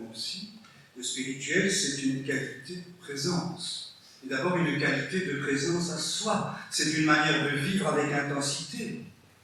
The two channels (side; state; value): both; identical; correlation 1.00